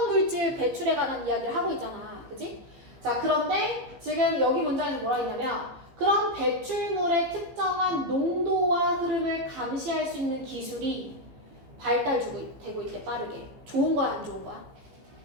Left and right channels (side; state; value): left; late; 15 ms